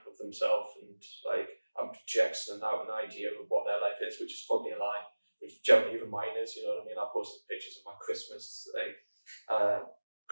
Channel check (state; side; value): inverted; both; correlation -1.00